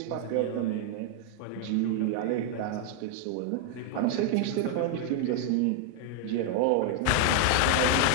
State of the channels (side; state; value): both; different; correlation 0.00